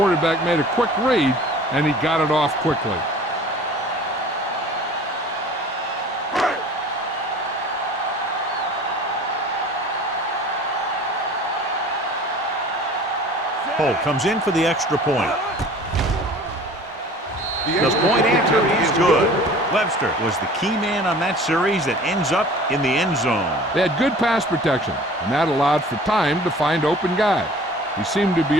made a quick read, and he got it off quickly. Holt comes in for the extra point. The point after is good. Webster was the key man on that series that ends up in the end zone. They had good pass protection, and that allowed for time to find open guys. He seemed to be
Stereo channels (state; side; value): normal; both; correlation 0.46